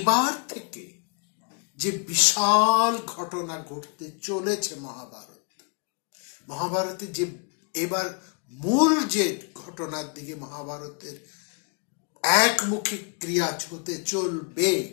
থেকে যে বিশাল ঘটনা ঘটতে চলেছে মহাভারতে যে এবার মূল যে ঘটনার দিকে মহাভারতের একমুখী ক্রিয়া হতে চলবে,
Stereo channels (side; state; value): right; quieter; 38.8 dB